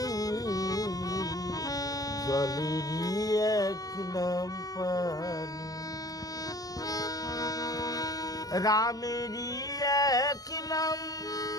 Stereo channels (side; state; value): right; late; 0.18 ms